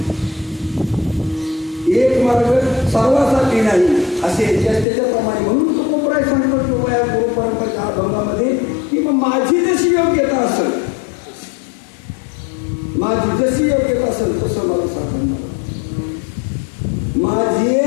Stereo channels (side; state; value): right; drops out; at 4.9 s